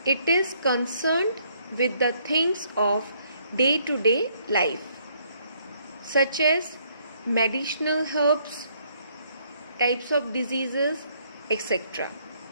It is concerned with the things of day-to-day life, such as medicinal herbs, types of diseases, etc.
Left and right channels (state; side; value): inverted; both; correlation -0.67